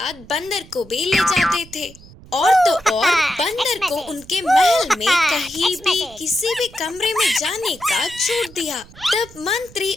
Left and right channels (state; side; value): noise; right; rumble, 22 dB below the sound